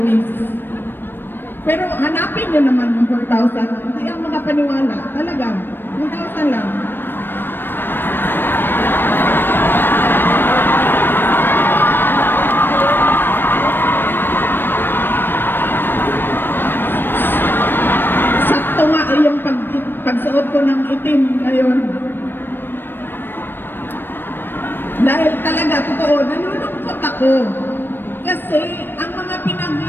Pero hanapin nyo naman yung 4,000. Hindi ang makapaniwala. Talaga, 1,000 lang. Sakto nga ay yung pagsuot ko ng itim ngayon. Dahil talaga, totoo, nalulungkot ako. Kasi ang mga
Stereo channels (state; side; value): late; right; 0.097 ms